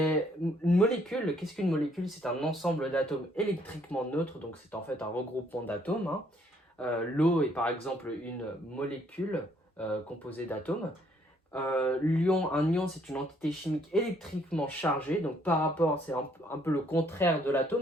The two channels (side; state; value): both; normal; correlation 0.66